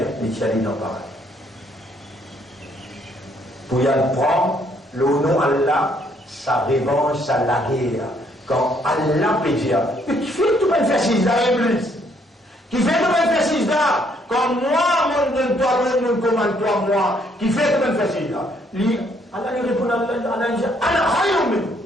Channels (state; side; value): normal; both; correlation 0.68